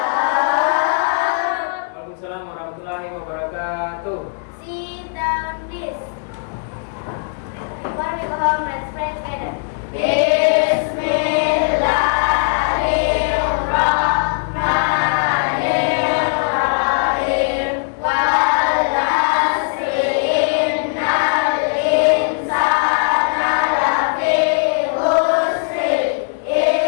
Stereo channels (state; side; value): silent; right; digital silence